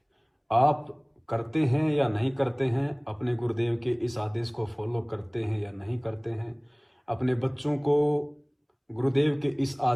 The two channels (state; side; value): identical; both; correlation 1.00